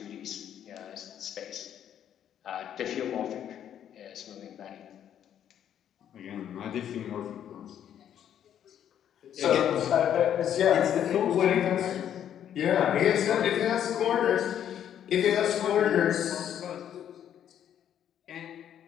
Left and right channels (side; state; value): right; quieter; 9.9 dB